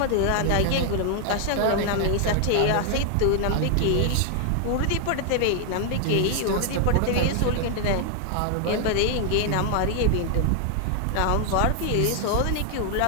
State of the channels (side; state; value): both; different; correlation 0.00